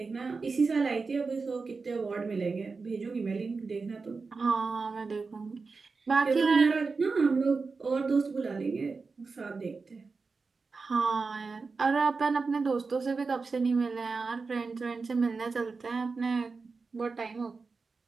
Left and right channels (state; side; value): quieter; left; 4.4 dB